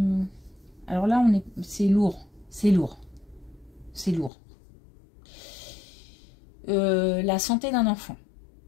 Alors là, c'est lourd, c'est lourd, c'est lourd. La santé d'un enfant.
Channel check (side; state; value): right; drops out; at 4.3 s